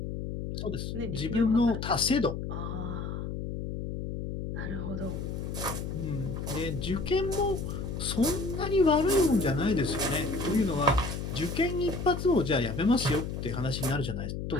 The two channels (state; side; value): noise; left; hum, 5 dB below the sound